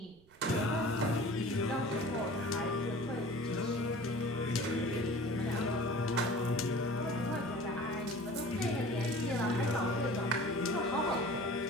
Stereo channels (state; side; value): noise; right; rumble, 28 dB below the sound